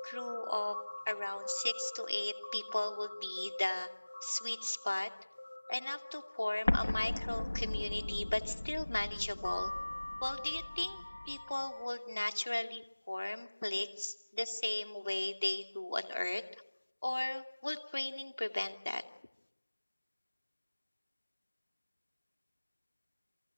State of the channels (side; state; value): both; inverted; correlation -1.00